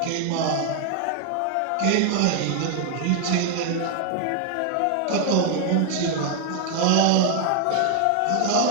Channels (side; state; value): both; different; correlation 0.00